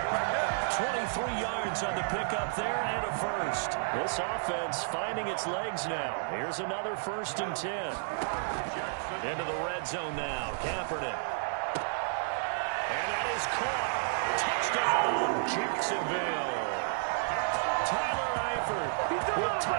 23 yards on the pickup there and a first. This offense finding its legs now. Here's another first and 10. Into the red zone now. Kaepernick. And that is caught. Touchdown, Jacksonville. Tyler Eifert with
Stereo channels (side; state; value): left; silent; digital silence